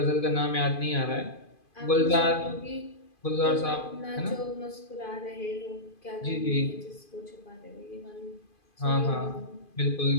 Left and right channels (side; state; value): right; late; 2.5 ms